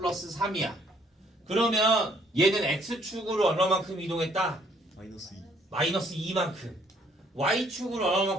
3이야. 그러면 얘는 x축으로 얼마만큼 이동했다? 마이너스 2 마이너스 2만큼. y축으로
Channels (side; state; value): both; normal; correlation 0.65